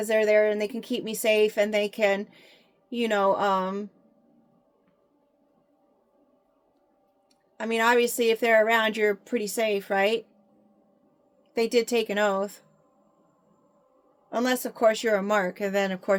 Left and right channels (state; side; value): identical; both; correlation 1.00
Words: they're there and they can keep me safe, and they can, obviously if they're around, you're pretty safe, right? They did take an oath. Unless, of course, you're a mark, and then, of